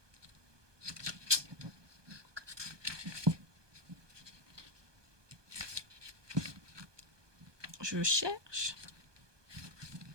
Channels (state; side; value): late; left; 1.2 ms